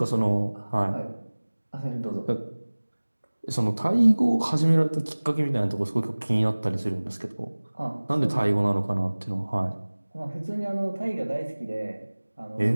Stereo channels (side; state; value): both; inverted; correlation -1.00